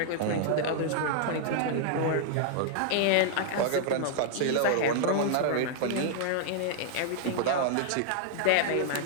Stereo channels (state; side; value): different; both; correlation -0.01